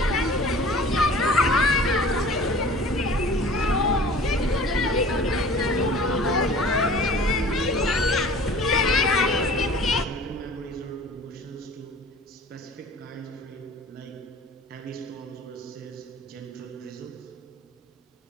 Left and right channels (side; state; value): both; normal; correlation 0.45